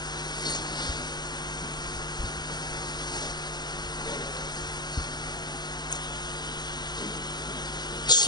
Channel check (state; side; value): late; right; 0.20 ms